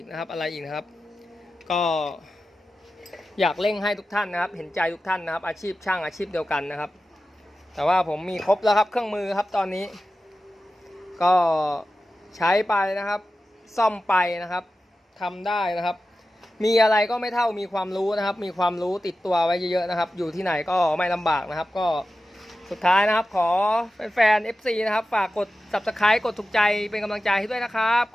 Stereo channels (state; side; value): normal; both; correlation 0.93